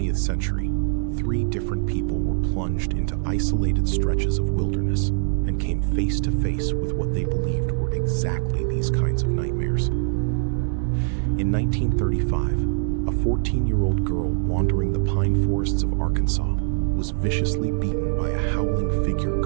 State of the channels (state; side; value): silent; left; digital silence